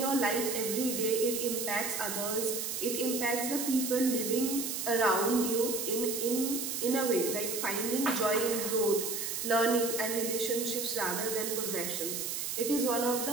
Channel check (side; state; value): right; noise; hiss, 3 dB below the sound